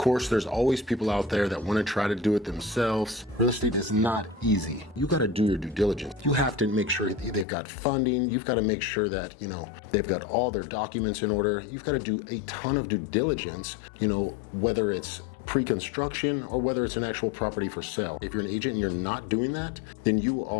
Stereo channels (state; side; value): drops out; right; at 7.5 s